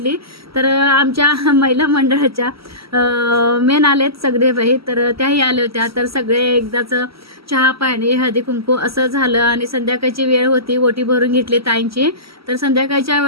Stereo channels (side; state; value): left; late; 0.76 ms